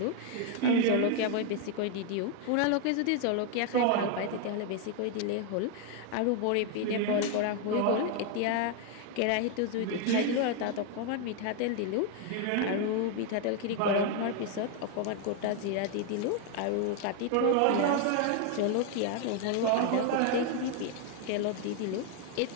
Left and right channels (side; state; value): both; different; correlation 0.01